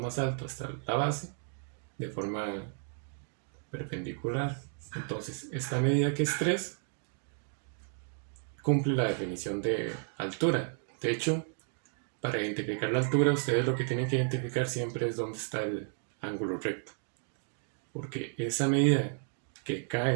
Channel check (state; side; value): silent; left; 56 dB below the other